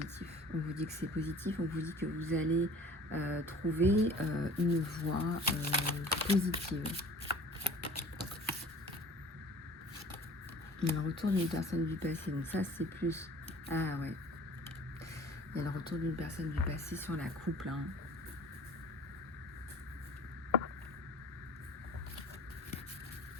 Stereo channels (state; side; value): normal; both; correlation 0.46